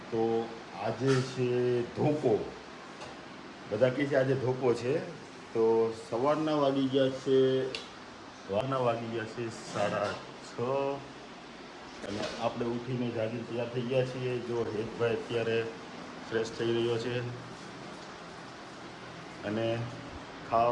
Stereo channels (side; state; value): both; identical; correlation 1.00